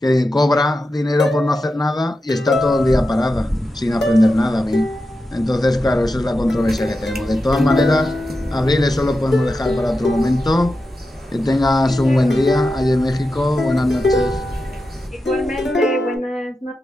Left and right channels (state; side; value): normal; both; correlation 0.90